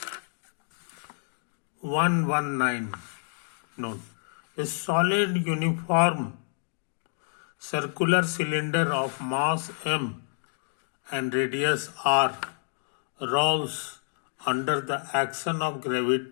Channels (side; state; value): right; silent; 59 dB below the other